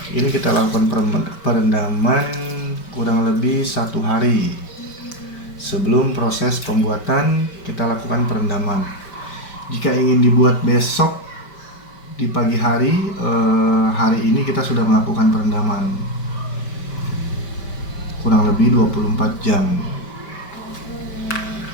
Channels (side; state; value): right; late; 5.2 ms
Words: Ini kita lakukan perendaman kurang lebih 1 hari. Sebelum proses pembuatan, kita lakukan perendaman. Jika ingin dibuat besok di pagi hari, hari ini kita sudah melakukan perendaman kurang lebih 24 jam.